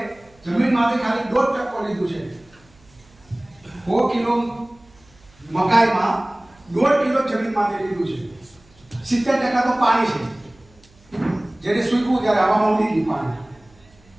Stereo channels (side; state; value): right; noise; hum, 29 dB below the sound